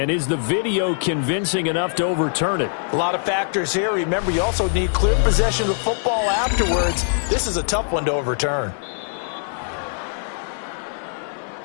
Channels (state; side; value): silent; right; digital silence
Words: is the video convincing enough to overturn it? A lot of factors here. Remember, you also need clear possession of the football afterwards. This is a tough one to overturn.